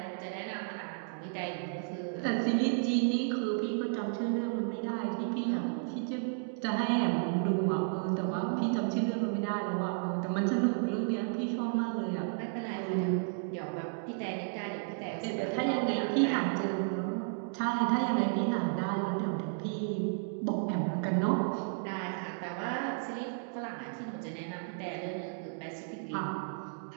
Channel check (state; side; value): silent; left; digital silence